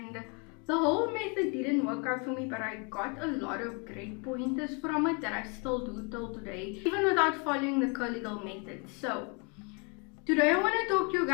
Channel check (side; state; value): right; quieter; 33.4 dB